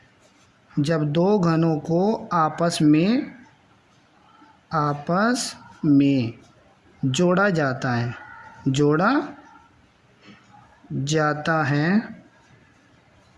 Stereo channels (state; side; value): identical; both; correlation 1.00